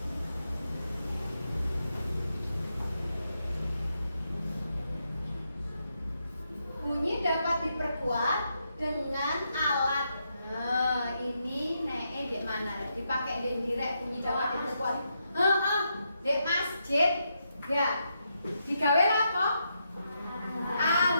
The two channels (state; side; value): inverted; both; correlation -0.82